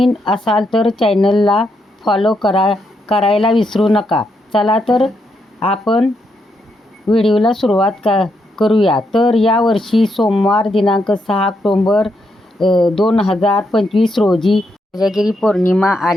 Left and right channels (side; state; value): both; normal; correlation 0.79